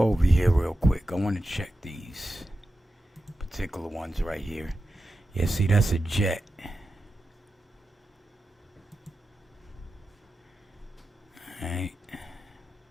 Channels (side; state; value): both; normal; correlation 0.91